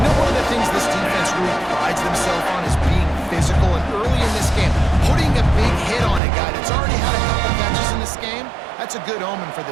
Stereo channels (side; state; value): left; drops out; at 6.2 s